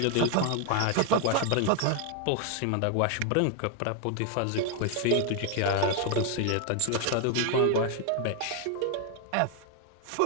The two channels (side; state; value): both; different; correlation 0.00